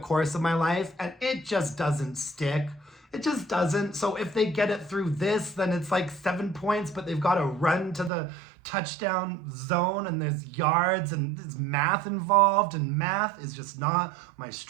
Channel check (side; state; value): left; drops out; at 8.1 s